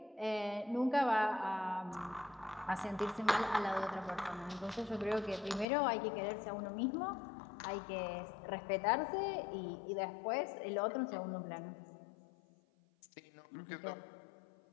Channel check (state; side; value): drops out; right; at 5.7 s